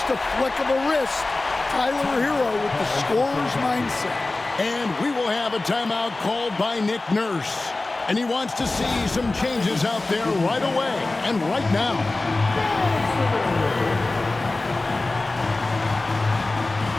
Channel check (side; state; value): right; quieter; 3.1 dB